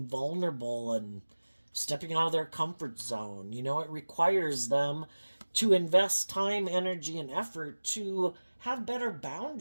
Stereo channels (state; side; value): inverted; both; correlation -1.00